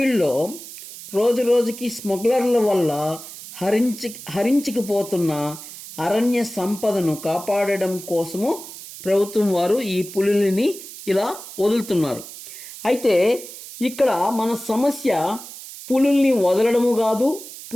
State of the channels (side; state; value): right; noise; hiss, 14 dB below the sound